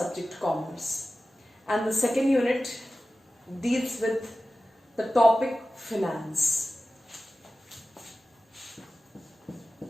commerce, and the second unit deals with the topic finance.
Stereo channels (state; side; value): normal; both; correlation 0.95